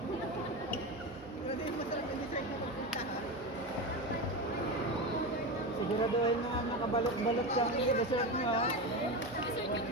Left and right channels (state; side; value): normal; both; correlation 0.20